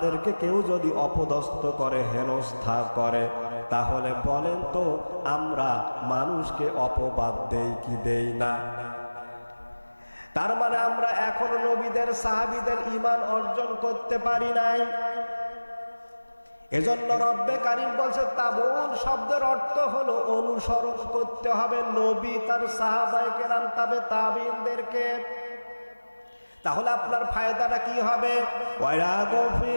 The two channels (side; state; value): both; inverted; correlation -1.00